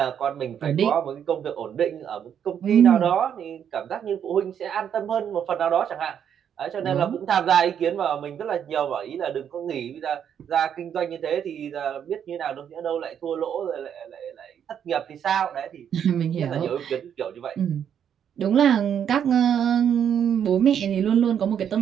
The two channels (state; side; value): quieter; left; 8.7 dB